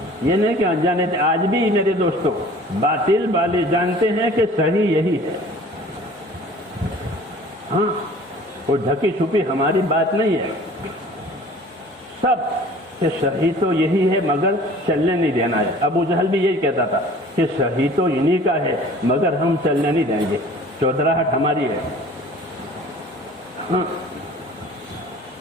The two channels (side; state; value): both; normal; correlation 0.47